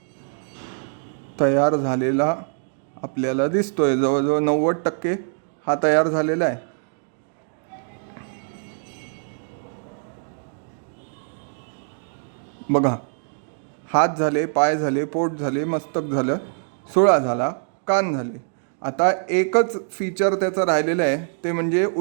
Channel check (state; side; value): silent; left; digital silence